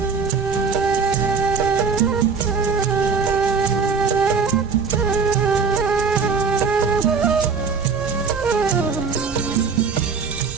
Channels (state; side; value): quieter; left; 5.5 dB